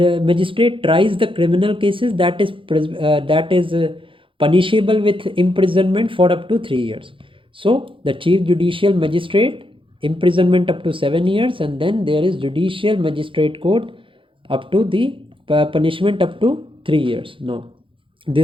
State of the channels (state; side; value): late; left; 0.25 ms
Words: tries the criminal cases that is punishable with imprisonment for up to 3 years. So the chief judicial magistrate, imprisonment up to 7 years, and then there is judicial magistrate court up to the punishment up to 3 years. Now